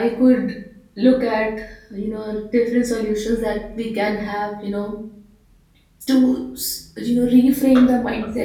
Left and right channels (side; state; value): both; identical; correlation 1.00